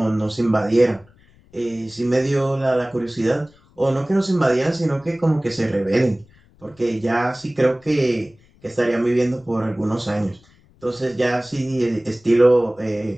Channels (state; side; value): noise; left; rumble, 30 dB below the sound